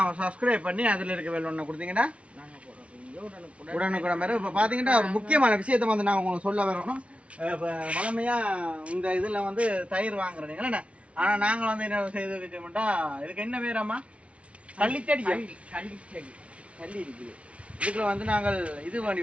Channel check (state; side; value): late; left; 0.062 ms